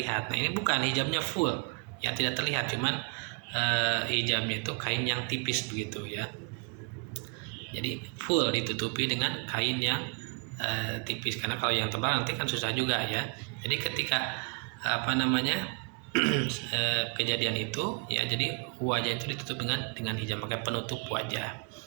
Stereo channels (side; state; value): left; quieter; 34.7 dB